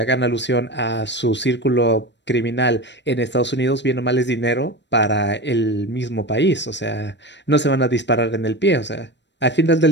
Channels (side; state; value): right; late; 0.52 ms